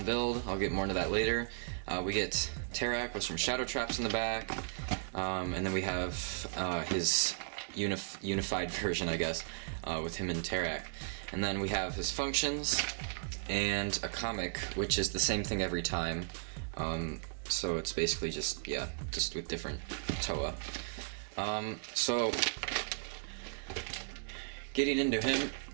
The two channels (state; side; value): silent; left; digital silence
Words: build. I'll get more into that later. We get Tarak with some shadow traps in the back, and then we have his unified version, I guess, with him and Tarak. And then we have his functions and a comic, which is the same thing every time. So it's basically just with different Toa. So getting into him.